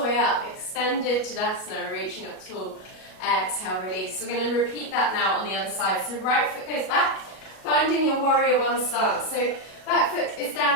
way up, extended Tadasana, reaching up tall. Exhale, release. We're going to repeat that now on the other side. So right foot goes back, finding your warrior one stance. So back foot is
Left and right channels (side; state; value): right; late; 37 ms